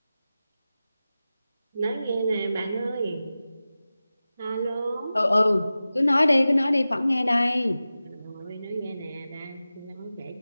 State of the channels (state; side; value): inverted; both; correlation -0.95